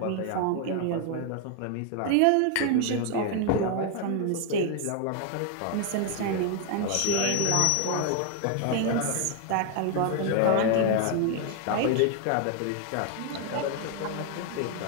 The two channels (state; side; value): different; both; correlation 0.00